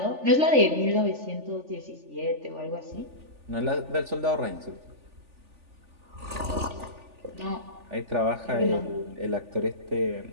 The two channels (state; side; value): late; left; 3.4 ms